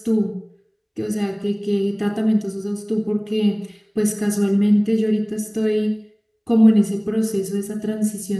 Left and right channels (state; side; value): identical; both; correlation 1.00